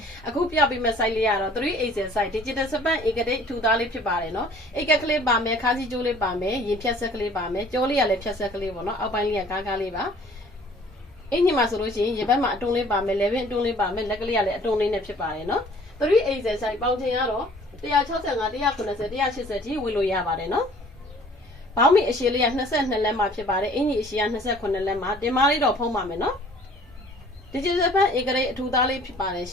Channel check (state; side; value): normal; both; correlation 0.53